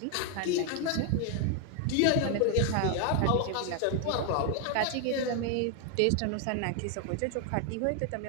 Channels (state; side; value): different; both; correlation 0.01